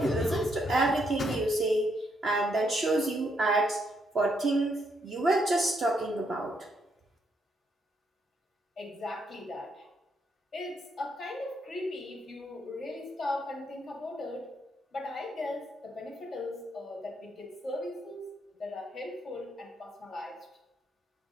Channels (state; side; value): normal; both; correlation 0.75